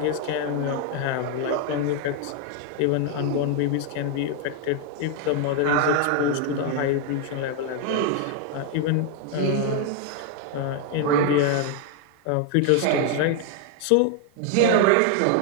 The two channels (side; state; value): both; different; correlation 0.00